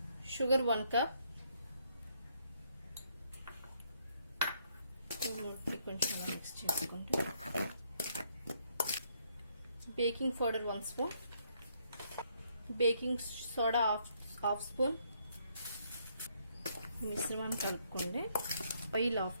Sugar 1 cup. కొంచెం మిక్స్ చేసుకోండి. Baking powder 1 spoon, baking soda half spoon. మిశ్రమాన్ని కలుపుకోండి. Oil 1/2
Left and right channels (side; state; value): both; inverted; correlation -0.71